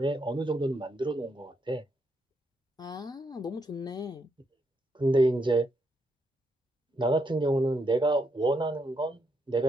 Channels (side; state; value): both; normal; correlation 0.79